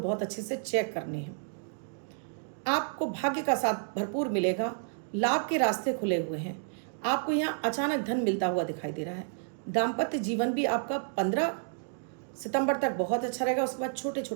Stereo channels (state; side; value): silent; left; digital silence